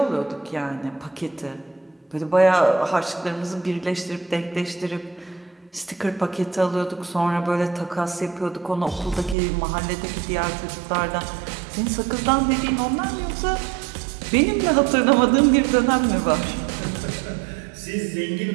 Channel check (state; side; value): drops out; left; at 9.3 s